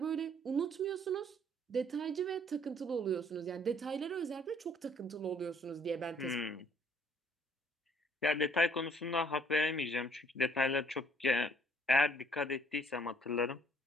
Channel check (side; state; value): both; normal; correlation 0.61